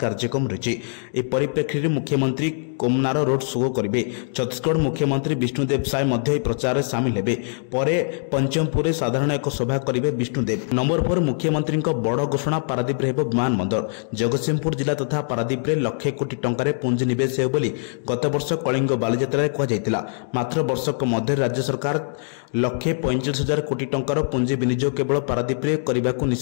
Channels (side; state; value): right; silent; digital silence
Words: रही। परिप्रेक्षी में मुख्यमंत्री कोमनार रोड शो करेंगे। छत्तीसगढ़ मुख्यमंत्री विष्णुदेव साय प्रचार में सामिल होते। पर पंचमपुर साधारण एक सभा करेंगे विष्णुदेव। नंबर 4 मुख्यमंत्री बड़ घोषणा पारादीप विमान बंदर। जगतसिंहपुर जिला तथा पारादीप लक्षे कोटी टंकार पुंजी निवेश हो गत वर्ष कलिंग बालीजात्रा कहला। मात्र वर्षक मध्य राज्य सरकार 1,45,000 कोटी टंकार पुंजी विनियोग केवल पारादीप करने को